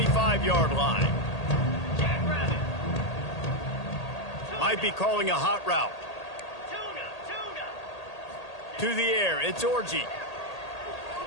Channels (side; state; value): right; late; 1.8 ms